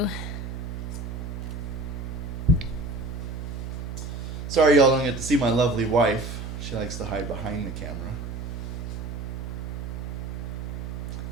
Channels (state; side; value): noise; right; hum, 6 dB below the sound